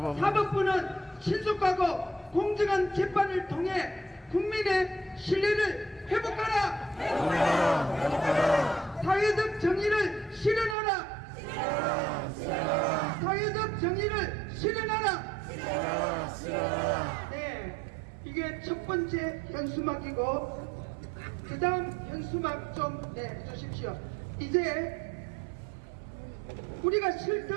사법부는 신속하고 공정한 재판을 통해 국민의 신뢰를 회복하라. 사회적 정의를 실현하라. 사회적 정의를 실현하라. 네, 이게 첫 번째 현수막이고, 그 다음 현수막 좀 내주십시오. 이제 우리가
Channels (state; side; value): drops out; left; at 10.8 s